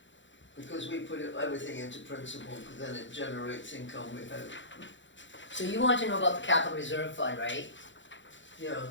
Because we put everything into principal, because then it generates income, we hope. So you want to know about the capital reserve fund, right? Yeah,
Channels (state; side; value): late; right; 0.54 ms